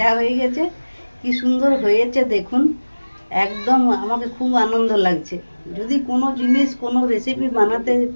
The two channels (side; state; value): both; inverted; correlation -1.00